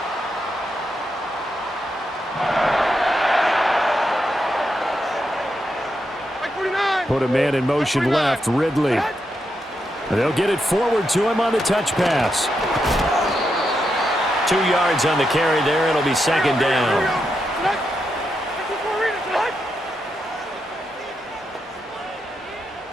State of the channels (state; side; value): normal; both; correlation 0.84